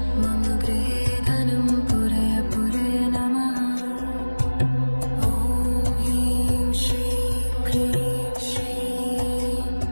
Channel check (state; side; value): inverted; both; correlation -1.00